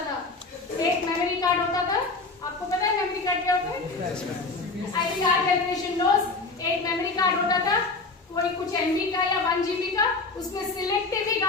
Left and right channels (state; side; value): quieter; right; 3.7 dB